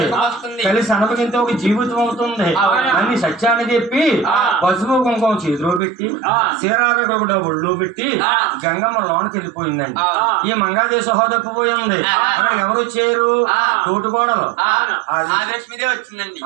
కలిసి అనుభవించే ఒక జీవితం అవుతుంది. అన్ని సత్యాన్ని చెప్పి పసుపు కుంకుమ చేతిలో పెట్టి చీరారకుండా ఒళ్ళో పెట్టి గంగమ్మ లోనికి వెళ్ళిపోయిందండి. ఈ మంగాదేవి సహోదరిపోయింది. అక్కడికి ఎవరు వచ్చారు? తోటికోడలు వచ్చిందండి.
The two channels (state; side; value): drops out; left; at 5.8 s